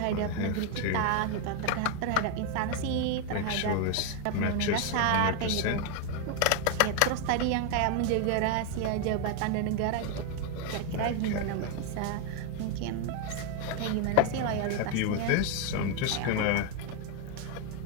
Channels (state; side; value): different; both; correlation 0.01